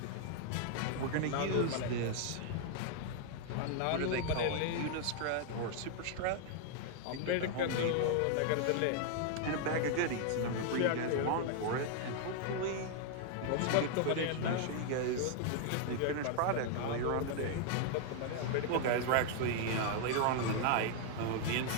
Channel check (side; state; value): both; different; correlation 0.00